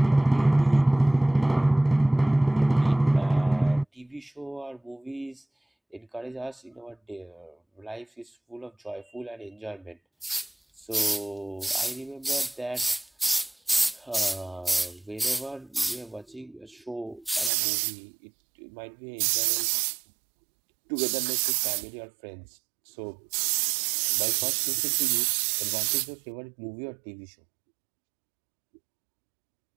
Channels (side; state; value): left; drops out; at 17.5 s